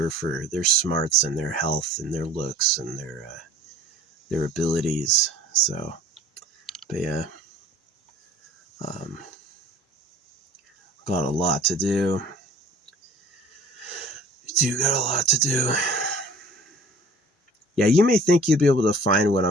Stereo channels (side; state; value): both; normal; correlation 0.48